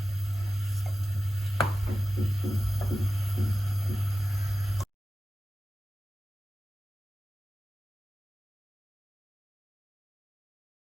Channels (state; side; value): normal; both; correlation 0.95